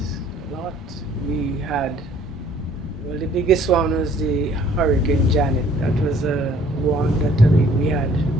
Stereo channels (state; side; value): normal; both; correlation 0.57